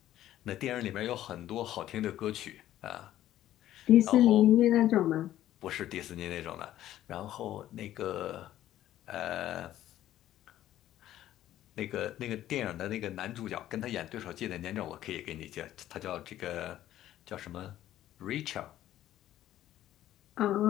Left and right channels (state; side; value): quieter; right; 13.0 dB